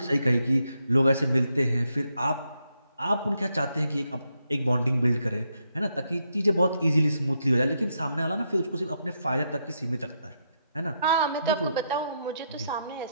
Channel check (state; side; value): inverted; both; correlation -0.80